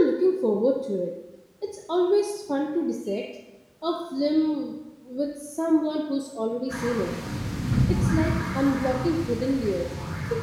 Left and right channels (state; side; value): identical; both; correlation 1.00